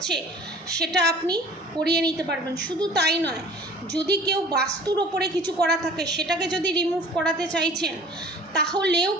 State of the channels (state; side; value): normal; both; correlation 0.47